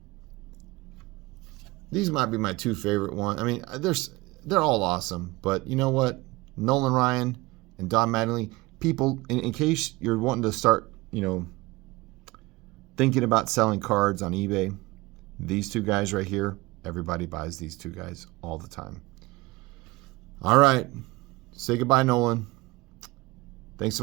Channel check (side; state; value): left; quieter; 21.8 dB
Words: These might be my two favorite ones. I mean, they're all awesome, but you know what? Nolan Ryan and Don Mattingly. People, in case you're wanting to start, thinking about selling cards on eBay, these two guys right here, Everybody buys these two guys all the time. All right. Say goodbye, Nolan. Thanks